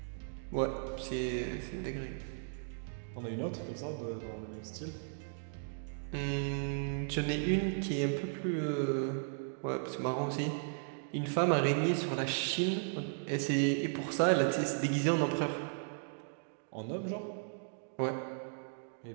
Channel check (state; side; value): silent; left; digital silence